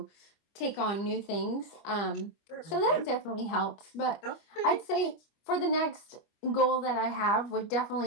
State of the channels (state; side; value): late; right; 25 ms